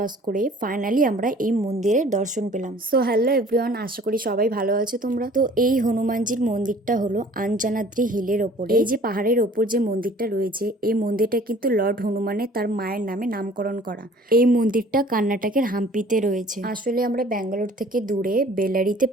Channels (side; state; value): both; normal; correlation 0.50